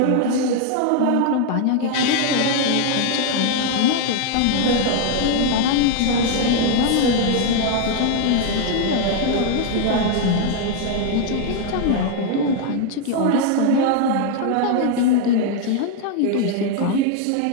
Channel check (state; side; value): different; both; correlation 0.01